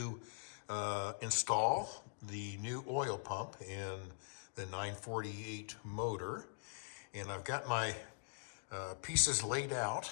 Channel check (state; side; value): silent; right; digital silence